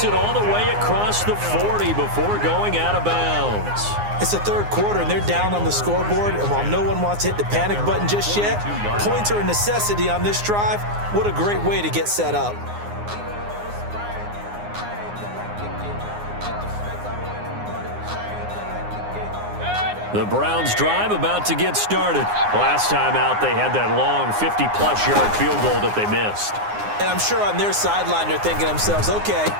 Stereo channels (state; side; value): late; left; 9.7 ms